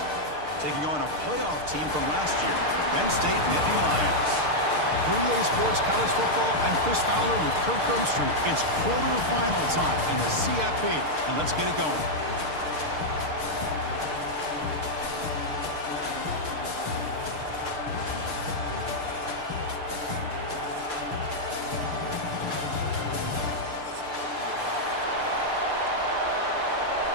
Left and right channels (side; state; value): left; late; 6.6 ms